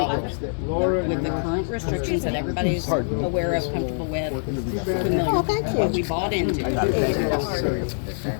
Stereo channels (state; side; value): silent; right; 58 dB below the other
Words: With the current restrictions that everybody's aware of, comfortable with, familiar with, what we bought into.